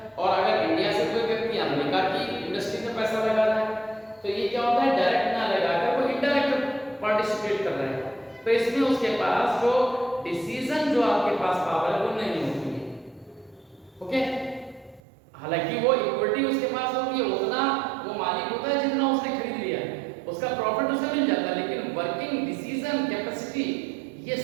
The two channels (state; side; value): drops out; left; at 15.0 s